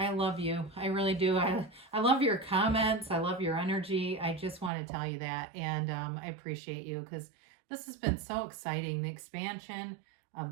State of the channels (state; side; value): drops out; left; at 4.7 s